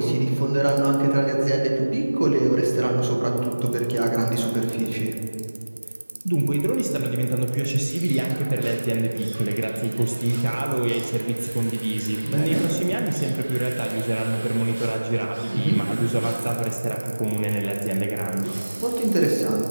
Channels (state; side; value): inverted; both; correlation -1.00